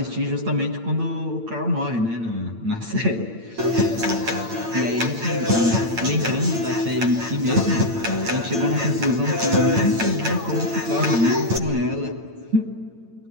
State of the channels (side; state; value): left; late; 8.8 ms